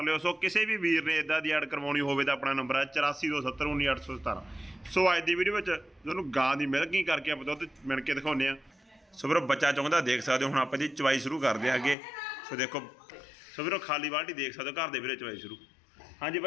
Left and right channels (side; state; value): right; drops out; at 12.0 s